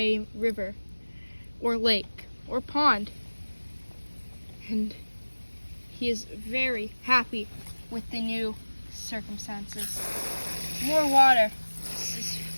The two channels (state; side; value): inverted; both; correlation -1.00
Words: or lake, or pond. And he is very happy with the new circumstances. More water is